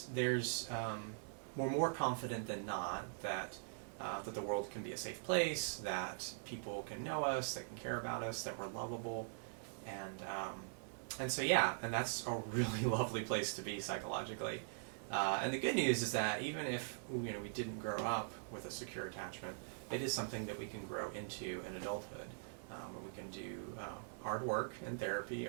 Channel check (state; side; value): silent; left; digital silence